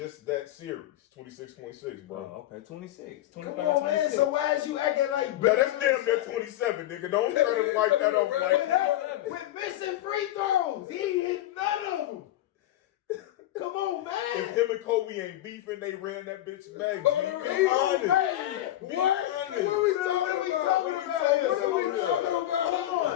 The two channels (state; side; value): quieter; right; 13.9 dB